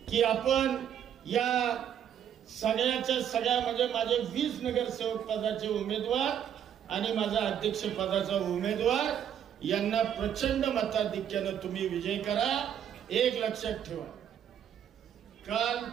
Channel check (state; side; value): quieter; left; 9.4 dB